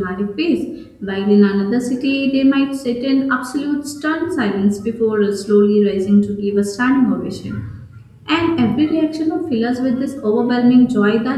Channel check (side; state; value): both; identical; correlation 1.00